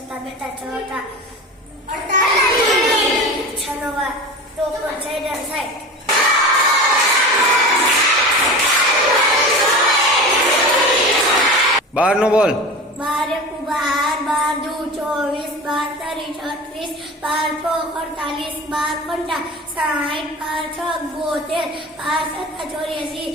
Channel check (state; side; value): normal; both; correlation 0.31